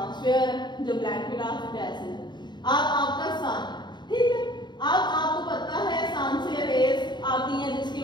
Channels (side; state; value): right; late; 0.21 ms